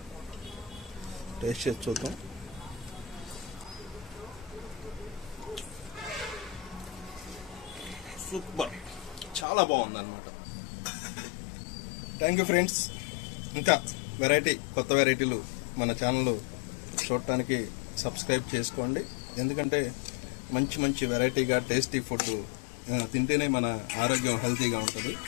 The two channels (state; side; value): drops out; right; at 9.5 s